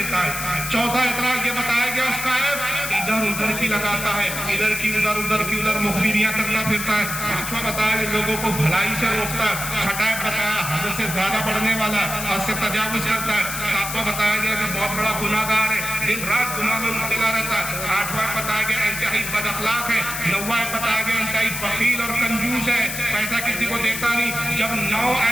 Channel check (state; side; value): noise; left; hiss, 5 dB below the sound